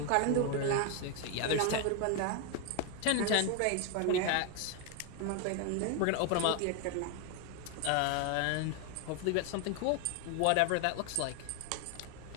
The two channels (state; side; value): different; both; correlation 0.01